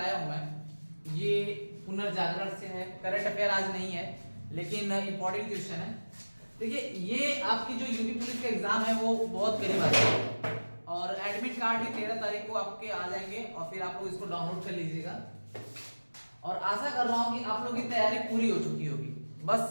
हूं मैं ये पुनर्जागरण से है। करंट अफेयर आज नहीं है लेकिन इंपॉर्टेंट क्वेश्चन है। देखिए ये आपकी जो यूपी पुलिस का एग्जाम है वो बहुत करीब आ है और एडमिट कार्ड भी 13 तारीख को आपके आ जाएंगे और फिर आप लोग इसको डाउनलोड कर लीजिएगा। और आशा कर रहा हूं कि आप लोगों की तैयारी पूरी हो चुकी होगी।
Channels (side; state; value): both; inverted; correlation -1.00